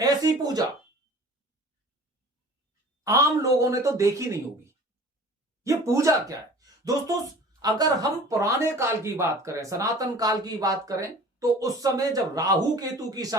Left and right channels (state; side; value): normal; both; correlation 0.44